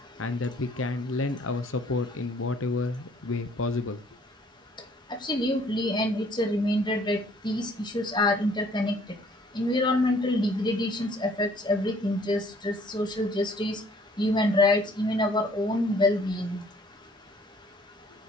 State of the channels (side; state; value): both; normal; correlation 0.59